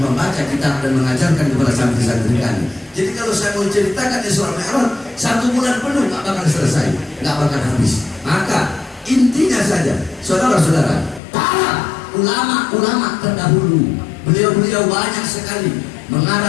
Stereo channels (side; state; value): right; drops out; at 11.2 s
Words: kitab dan mengajarkan kepada santri-santri kami. Jadi kalau saya mau ceritakan Isra Mi'raj 1 bulan penuh nggak bakal selesai, nggak bakal habis. Maka intinya saja, saudara-saudara, para ulama-ulama terdahulu, beliau-beliau banyak sekali